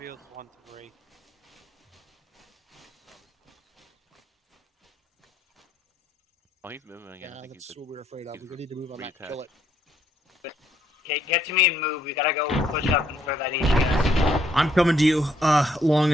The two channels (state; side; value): normal; both; correlation 0.70